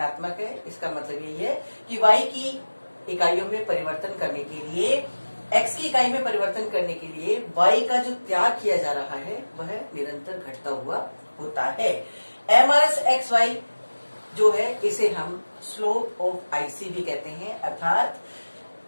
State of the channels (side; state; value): both; inverted; correlation -1.00